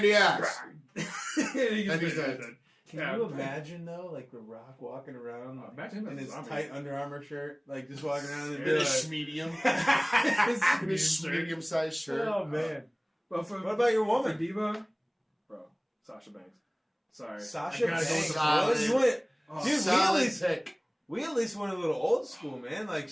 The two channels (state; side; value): identical; both; correlation 1.00